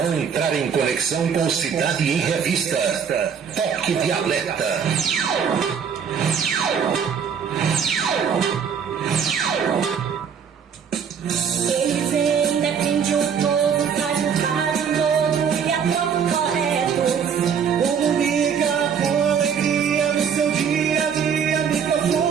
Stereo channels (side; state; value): left; quieter; 7.1 dB